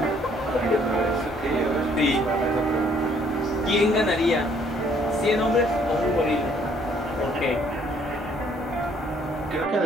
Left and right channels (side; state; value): both; normal; correlation 0.63